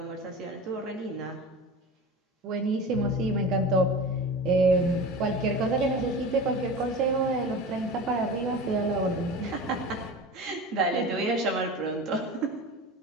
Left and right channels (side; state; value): both; normal; correlation 0.32